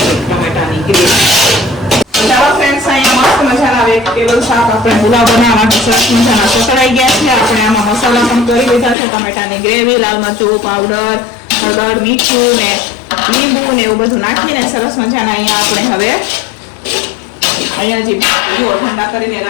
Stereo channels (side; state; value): right; drops out; at 9.0 s